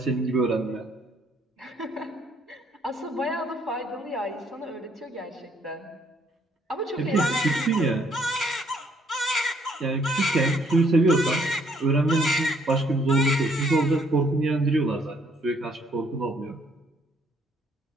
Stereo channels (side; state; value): both; normal; correlation 0.67